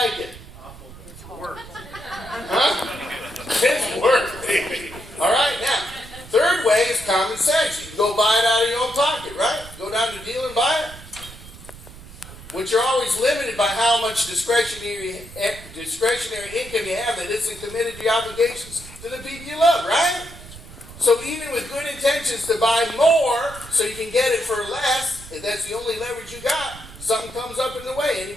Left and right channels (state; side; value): noise; right; rumble, 17 dB below the sound